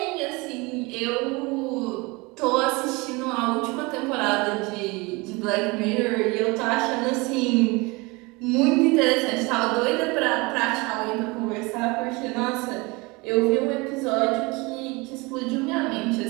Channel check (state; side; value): quieter; left; 25.5 dB